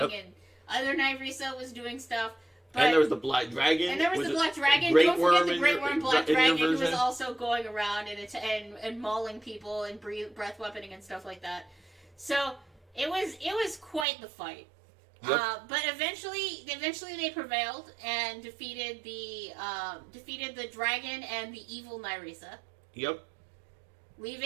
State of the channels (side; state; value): left; drops out; at 14.1 s